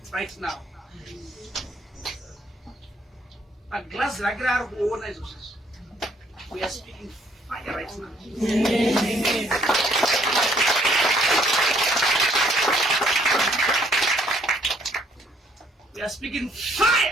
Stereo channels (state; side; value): normal; both; correlation 0.65